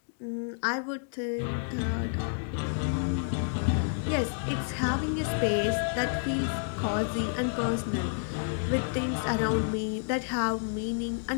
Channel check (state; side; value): silent; right; digital silence